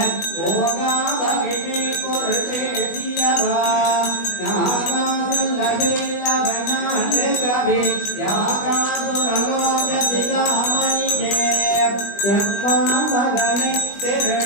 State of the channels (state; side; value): late; right; 20 ms